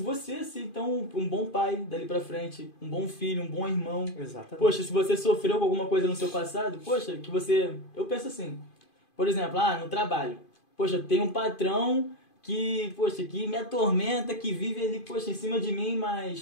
a ser então um bom pai dali pra frente, um bom filho, um bom irmão. Exatamente. Poxa, se você sofreu com alguma coisa no seu passado, poxa, eu penso assim, por exemplo, no trabalho, poxa, tem um patrão que me atormenta, que vive ali, poxa, em cima de mim,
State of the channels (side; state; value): right; late; 2.5 ms